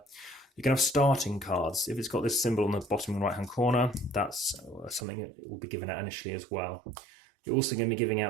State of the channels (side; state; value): left; drops out; at 5.1 s